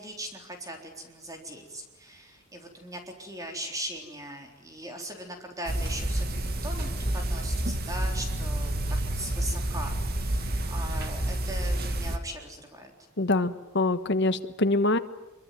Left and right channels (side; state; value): both; normal; correlation 0.57